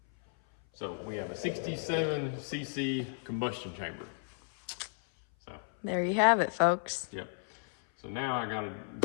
So we have a 67 cc combustion chamber. So There you have it, folks. yep. So now I gotta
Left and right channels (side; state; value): right; silent; 55 dB below the other